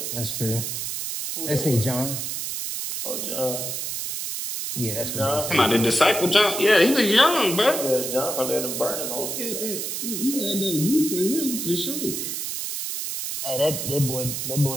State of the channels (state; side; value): noise; right; hiss, 4 dB below the sound